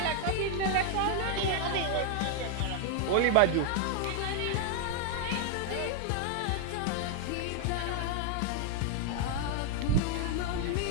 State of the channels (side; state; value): both; different; correlation 0.00